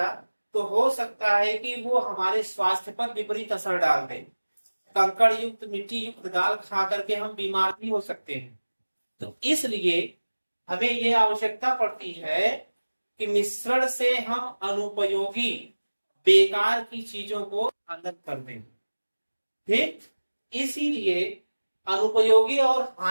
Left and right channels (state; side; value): inverted; both; correlation -1.00